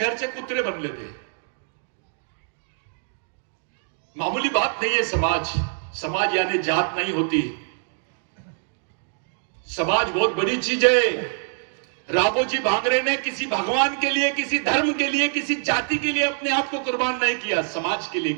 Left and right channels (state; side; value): silent; left; digital silence